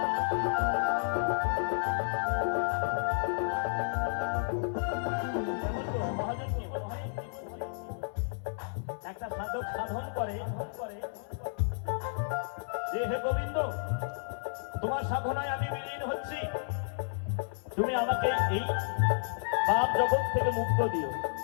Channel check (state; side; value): silent; right; digital silence